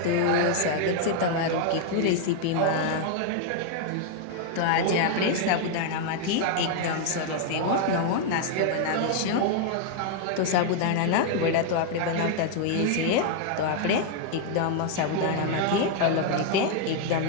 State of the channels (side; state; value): both; different; correlation 0.00